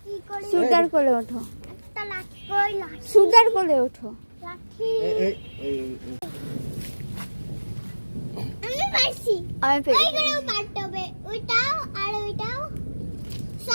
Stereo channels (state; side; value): inverted; both; correlation -1.00